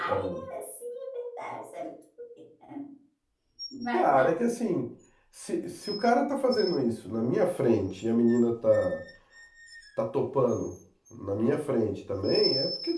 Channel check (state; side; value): identical; both; correlation 1.00